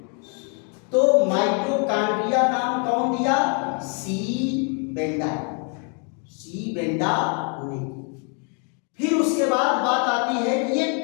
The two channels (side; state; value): right; quieter; 39.3 dB